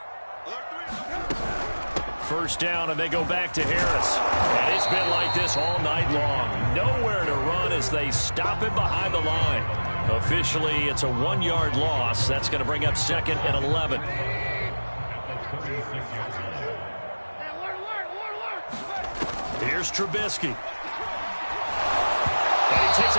First down, and they go back to Harris. And it's been like this all night long. Nowhere to run as they stop him behind the line. Officially, it's a 1-yard loss. That's going to bring up second and 11. Here's Trubisky. And he takes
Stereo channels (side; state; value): both; inverted; correlation -1.00